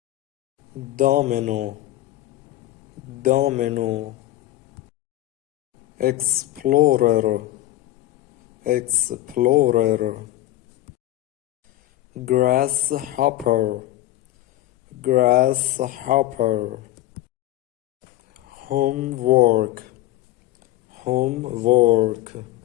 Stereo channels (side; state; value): right; quieter; 15.6 dB